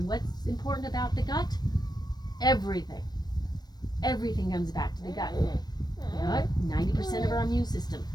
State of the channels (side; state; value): right; late; 0.19 ms